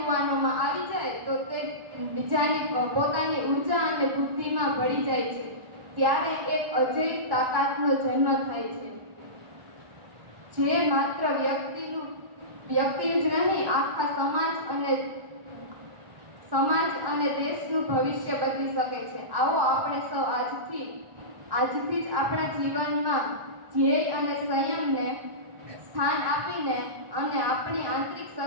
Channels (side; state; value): left; late; 1.1 ms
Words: આવી જાય તો તે પોતાની ઉર્જા અને બુદ્ધિમાં ભળી જાય છે. ત્યારે એક અજેય તાકાતનો જન્મ થાય છે, જે માત્ર વ્યક્તિનું જ નહીં, આખા સમાજ અને દેશનું ભવિષ્ય બદલી શકે છે. આવો આપણે સૌ આજથી જ આપણા જીવનમાં ધ્યેય અને સંયમને સ્થાન આપીને અને આપણી આંતરિક